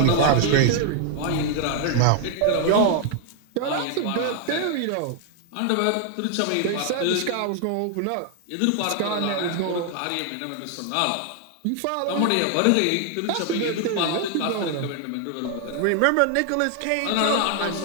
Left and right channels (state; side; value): different; both; correlation 0.00